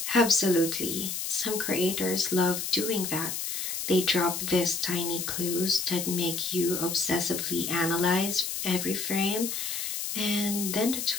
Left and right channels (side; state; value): left; noise; hiss, 3 dB below the sound